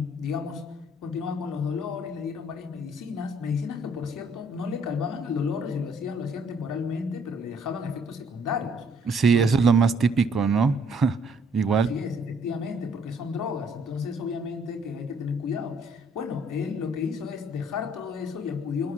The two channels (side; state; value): both; normal; correlation 0.63